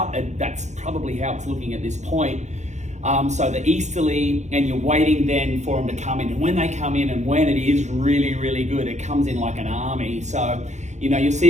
that's probably how it's looking at this point. So the easterly, and you're waiting then for them to come in. And when they come in, and when it is really, really good, it comes in like an army. So, you know, you'll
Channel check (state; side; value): late; left; 0.34 ms